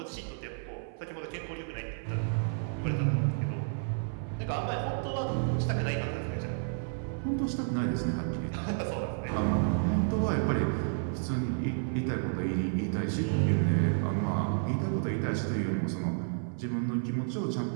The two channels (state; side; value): silent; left; 57 dB below the other